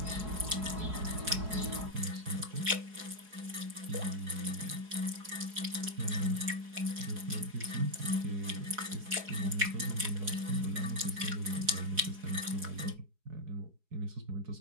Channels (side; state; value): left; late; 4.7 ms